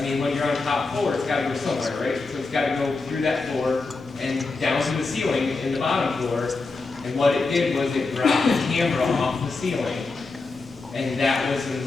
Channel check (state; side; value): quieter; right; 3.8 dB